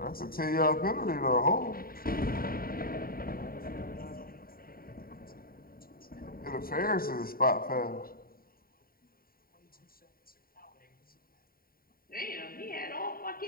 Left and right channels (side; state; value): right; late; 0.43 ms